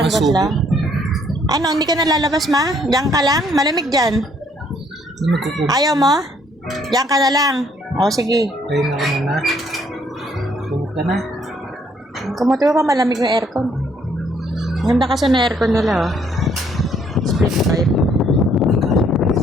lang. Ano, hindi ka nalalabas ma? Diyan ka lang? Malamig dyan. Ayaw mo? Diyan ka na lang. O, sige. Ayun ako muna. Tumok ka na. Kumutuwa pa, malamig yung aircon. Ganda kasi na aircon nila, oh. Split type.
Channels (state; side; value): normal; both; correlation 0.66